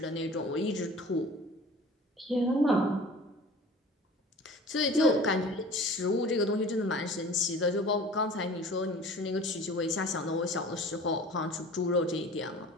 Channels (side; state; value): both; normal; correlation 0.43